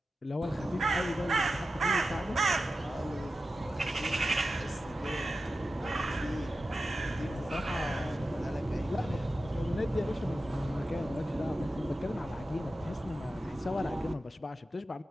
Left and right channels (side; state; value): both; normal; correlation 0.92